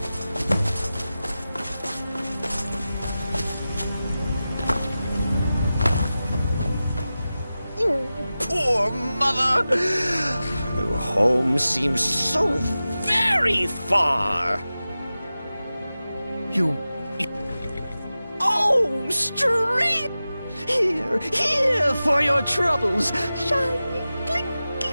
Poor mother. Her home seems so very far. You... Oh, straight! Here for your troubles. Shiny,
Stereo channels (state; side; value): inverted; both; correlation -0.95